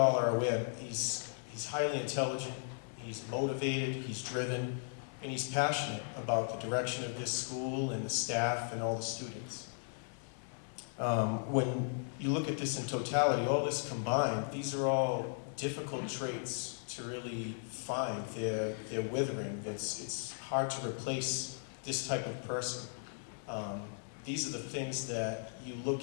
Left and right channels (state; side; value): silent; right; 53 dB below the other